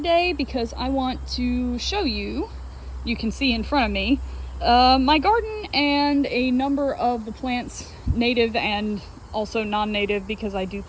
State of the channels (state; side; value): identical; both; correlation 1.00